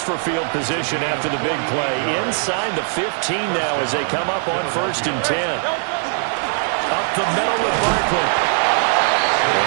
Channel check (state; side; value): silent; left; 57 dB below the other